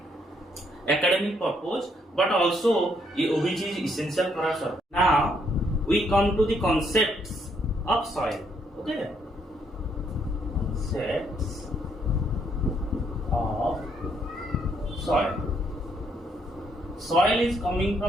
academic purpose but also which is essential for our survival. Now we come to the concepts of soil. Okay, concepts of soil. Soil is coming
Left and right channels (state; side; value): normal; both; correlation 0.72